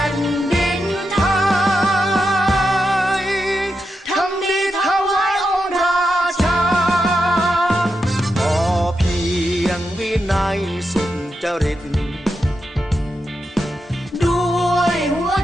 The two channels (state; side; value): normal; both; correlation 0.87